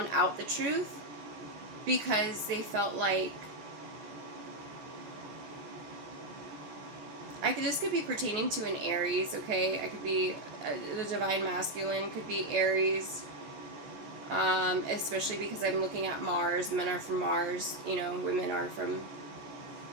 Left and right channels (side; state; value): left; late; 14 ms